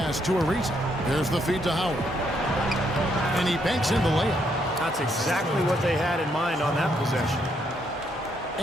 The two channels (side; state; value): both; normal; correlation 0.74